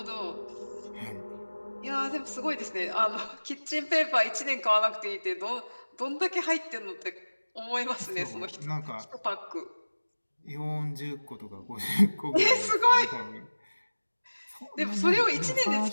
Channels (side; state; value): both; inverted; correlation -1.00